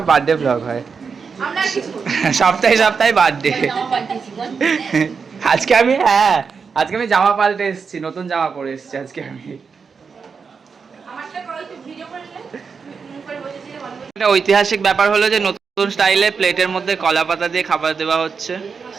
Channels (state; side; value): quieter; left; 5.6 dB